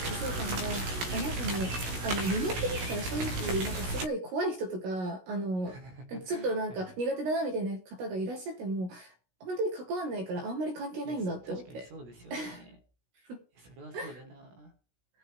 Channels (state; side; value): late; left; 16 ms